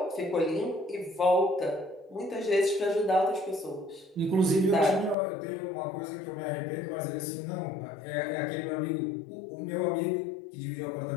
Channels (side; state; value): right; drops out; at 5.2 s